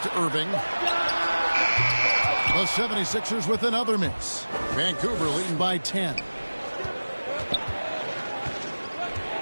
Irving. The 76ers with another miss. Vancouver leading by 10.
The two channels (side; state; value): both; inverted; correlation -1.00